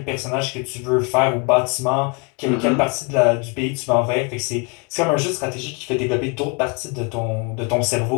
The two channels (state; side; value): quieter; right; 32.5 dB